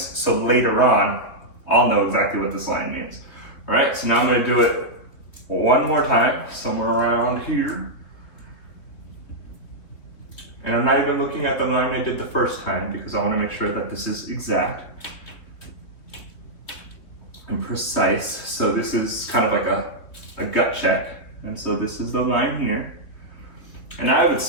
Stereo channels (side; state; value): right; late; 3.0 ms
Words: so later on, I'll know exactly what this line means. All right, so now I'm gonna do it one more time, somewhere around here. And I'm not even looking at the line I did the first time because I wanna make sure that this is exact and precise. So this is kind of like a gut check. And so this is the line here. And I would